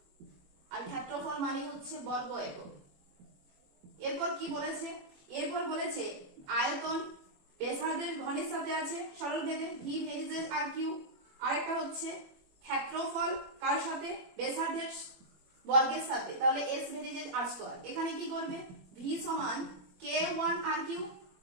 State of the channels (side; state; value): left; late; 21 ms